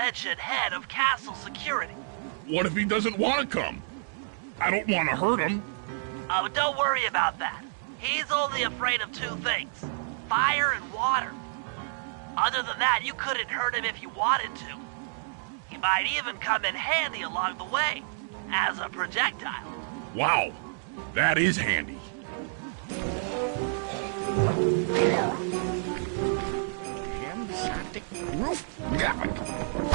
head of castle security. What if he doesn't want to come? I don't want to hurt him. Oh, don't worry about that. He's only afraid of two things, fire and water. Other than that, you couldn't hurt him if you wanted to. He might even come in handy along the way, as a projectile. Wow, that is handy.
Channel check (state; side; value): silent; left; digital silence